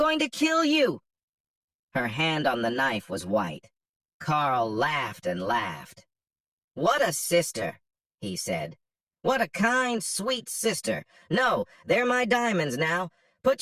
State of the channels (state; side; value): identical; both; correlation 1.00